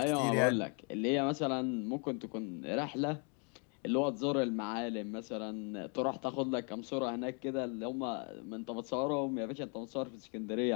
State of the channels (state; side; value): quieter; right; 37.7 dB